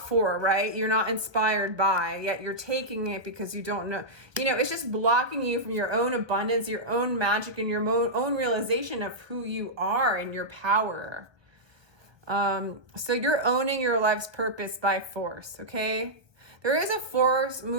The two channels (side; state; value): left; late; 1.2 ms